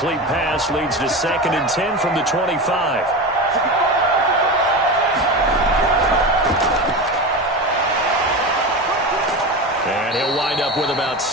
pass leads to 2nd and 10 from the 25. And he'll wind up with about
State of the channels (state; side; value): normal; both; correlation 0.24